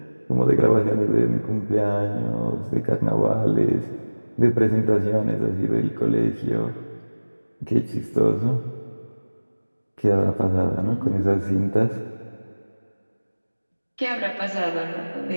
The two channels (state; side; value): inverted; both; correlation -1.00